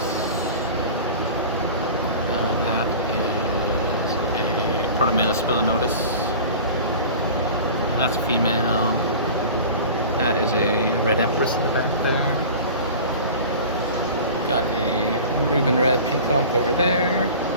That is a Protomela spilinotus. And that's a female. That is a red empress in the back there. Got a Reuben red peacock over there.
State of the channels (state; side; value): inverted; both; correlation -0.38